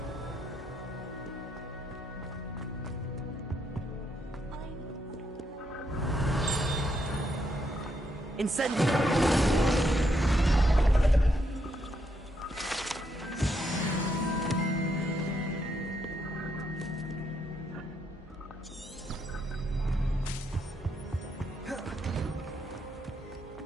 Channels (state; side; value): normal; both; correlation 0.77